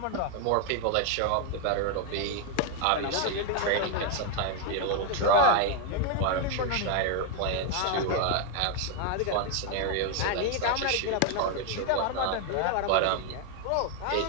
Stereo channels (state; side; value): different; both; correlation 0.01